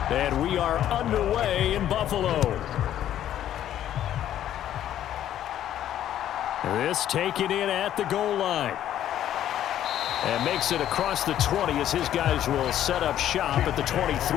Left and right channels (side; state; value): right; quieter; 11.5 dB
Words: And we are underway in Buffalo. This taken in at the goal line. And makes it across the 20 as his guys will set up shop at the